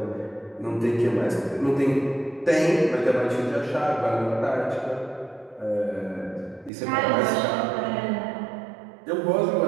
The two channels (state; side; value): drops out; left; at 6.7 s